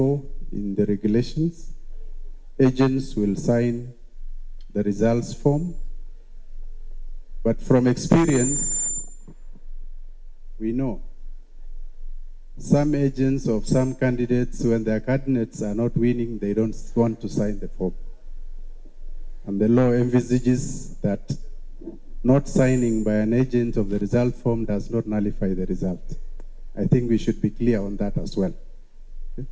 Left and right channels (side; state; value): both; identical; correlation 1.00